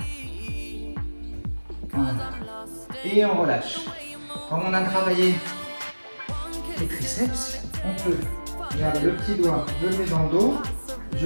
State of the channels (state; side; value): inverted; both; correlation -1.00